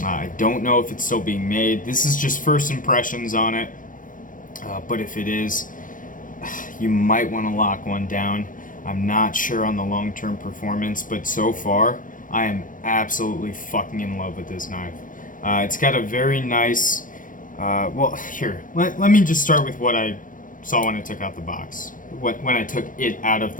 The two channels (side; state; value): right; late; 0.38 ms